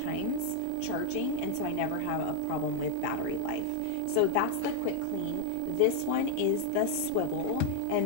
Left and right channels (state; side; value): different; both; correlation 0.01